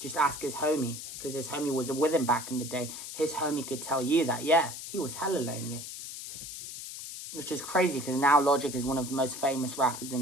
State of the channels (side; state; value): left; noise; hiss, 9 dB below the sound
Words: ask his homie, because his homie was with him back in the day. His homie could tell you that, yeah, he was hella lonely. Which is crazy, because now Logic is one of the most famous rappers